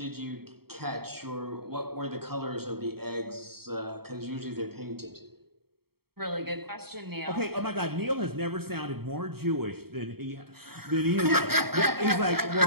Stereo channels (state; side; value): late; left; 0.95 ms